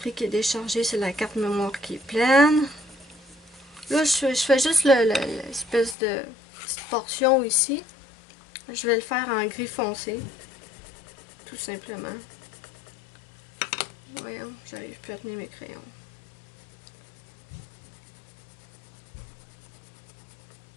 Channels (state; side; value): drops out; right; at 6.0 s